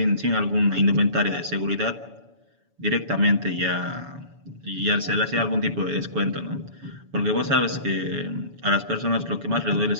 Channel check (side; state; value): left; late; 7.0 ms